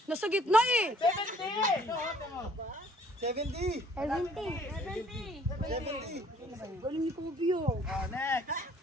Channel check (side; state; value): both; normal; correlation 0.59